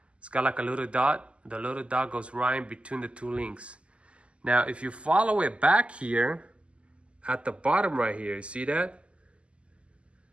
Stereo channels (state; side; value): late; left; 0.056 ms